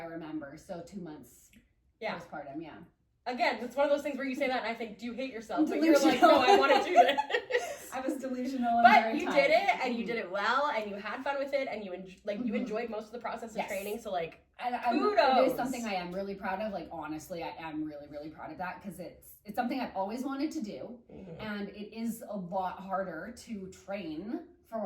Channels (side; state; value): both; identical; correlation 1.00